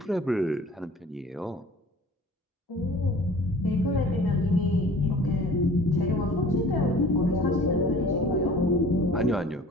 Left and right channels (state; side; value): normal; both; correlation 0.46